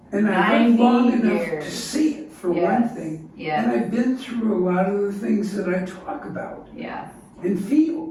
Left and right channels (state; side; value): identical; both; correlation 1.00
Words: and I've lived long 90 enough years. to see it, for one thing. Yes. And I've been through a lot of the things that I talk about Yes. and